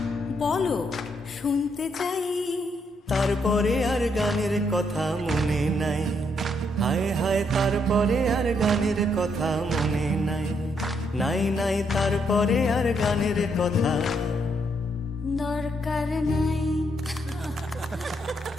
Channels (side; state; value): both; normal; correlation 0.75